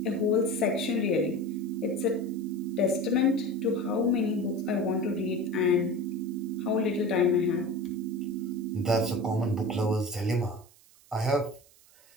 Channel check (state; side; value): noise; right; hiss, 27 dB below the sound